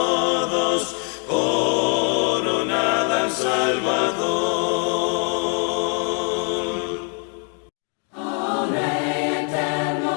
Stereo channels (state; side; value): quieter; right; 37.2 dB